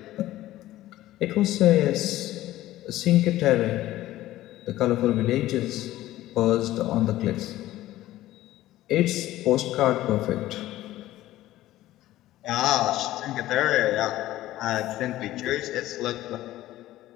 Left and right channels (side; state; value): right; quieter; 15.2 dB